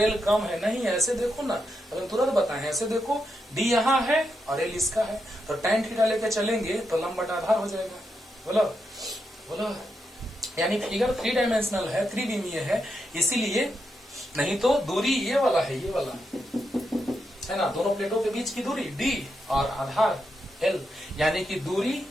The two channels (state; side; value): normal; both; correlation 0.84